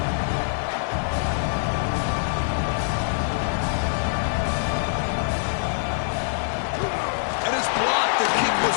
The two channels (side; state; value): right; silent; digital silence